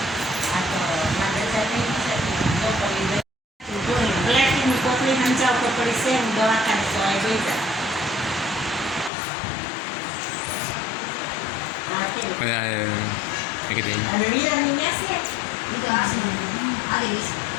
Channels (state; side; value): drops out; right; at 9.1 s